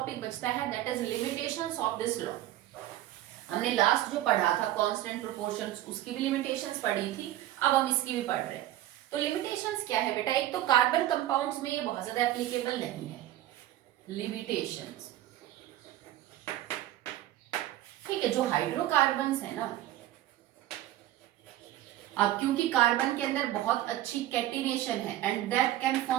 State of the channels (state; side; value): quieter; left; 14.1 dB